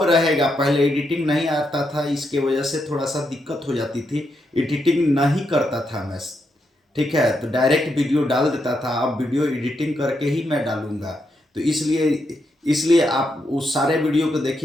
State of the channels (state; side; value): normal; both; correlation 0.81